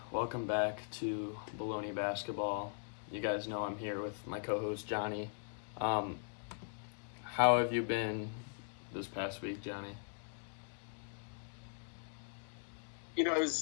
Welcome back to Bullony Basketball. You guys know I'm here with my co-host Johnny. How have you been this past week, Johnny? It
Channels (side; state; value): right; silent; digital silence